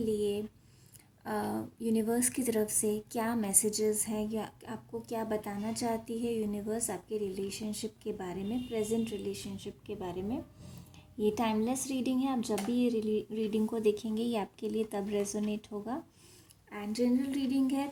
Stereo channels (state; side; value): identical; both; correlation 1.00